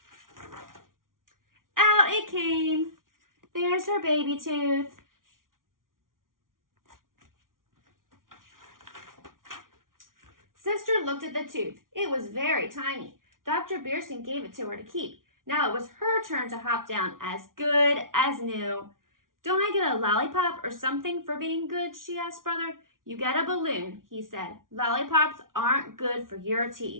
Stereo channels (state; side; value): late; left; 0.90 ms